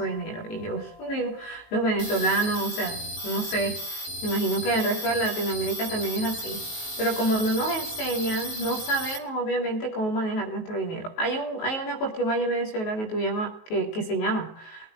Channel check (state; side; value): late; right; 19 ms